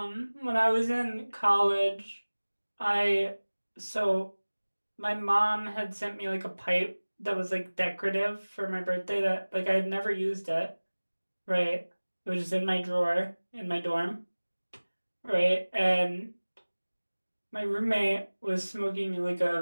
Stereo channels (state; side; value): inverted; both; correlation -1.00